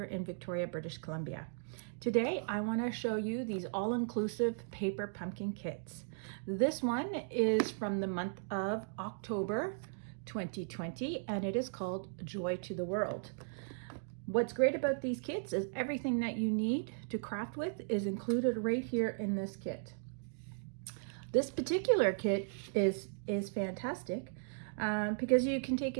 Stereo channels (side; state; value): left; silent; digital silence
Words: in Victoria, British Columbia. Today I want to show you these all-inclusive paper pumpkin kits. This one is from the month of October 2020 and it is called Joy to the World. What's great about these kits is everything that you need to craft with is included right here in this kit. This particular kit is fantastic because you can take